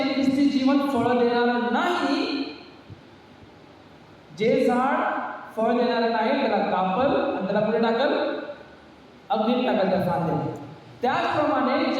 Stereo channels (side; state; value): both; identical; correlation 1.00